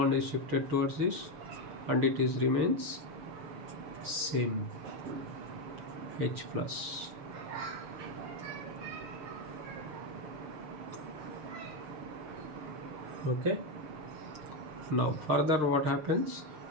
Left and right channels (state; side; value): late; left; 6.7 ms